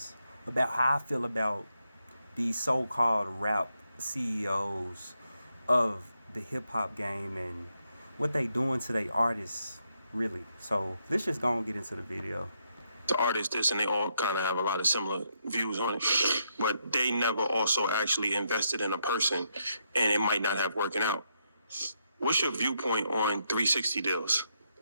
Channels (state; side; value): inverted; both; correlation -0.79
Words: about how I feel about these so-called rap CEOs of the hip-hop game and what they doing to their artists, really. So let's just go and get into the video. The artists this and they all kind of have a lot of similar views on it, but they never also actually invested in a person, and it might not have working out. What's your viewpoint on 360 deals?